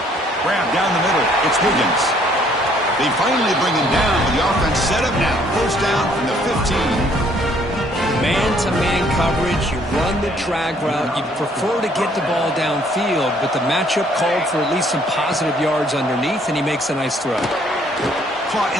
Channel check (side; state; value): both; normal; correlation 0.63